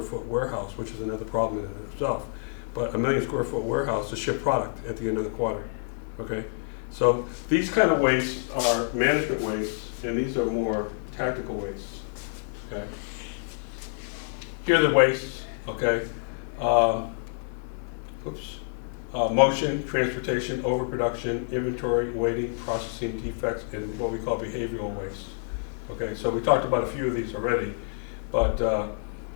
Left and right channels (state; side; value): silent; right; digital silence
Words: warehouse, which is another problem in itself. But a 1,000,000-square-foot warehouse to ship product at the end of the quarter, okay? So these kind of wastes are management wastes, and these are more tactical wastes, okay? Here are the wastes, okay? Motion, transportation, overproduction, inventory, waiting, processing, defects, and what we call behavioral wastes. Okay, so we talked about a few of these already, but